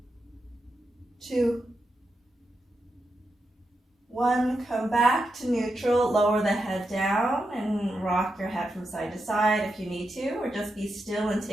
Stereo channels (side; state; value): both; normal; correlation 0.86